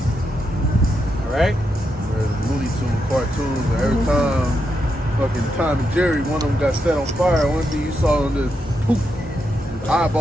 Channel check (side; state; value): both; normal; correlation 0.83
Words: All right. Where the Looney Tunes cartoons, and every time fucking Tom and Jerry, one of them got set on fire. One thing you saw on the poof,